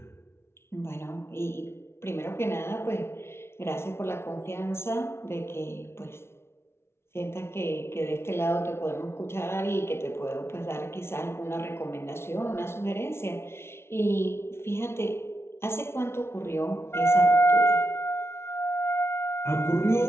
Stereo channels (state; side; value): late; right; 0.12 ms